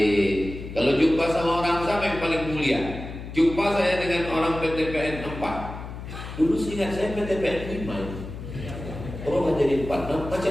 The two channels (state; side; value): noise; left; hum, 10 dB below the sound